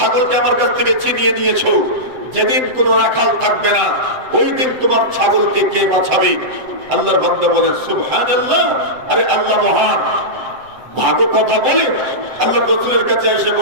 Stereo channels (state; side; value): late; left; 7.9 ms